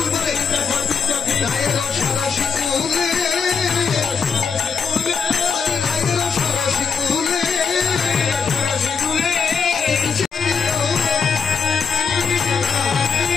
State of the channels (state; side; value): quieter; right; 5.8 dB